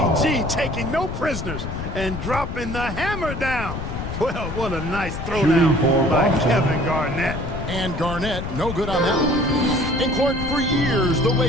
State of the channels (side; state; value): left; noise; rumble, 6 dB below the sound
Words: taking no prisoners and dropping the hammer down. Well, what a nice throwdown by Kevin Garnett. And Garnett, no good on that one. And Clark, for years, the